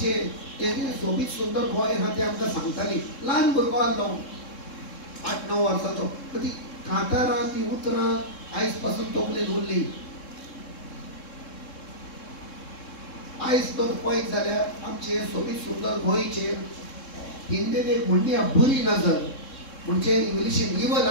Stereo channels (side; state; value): right; late; 3.7 ms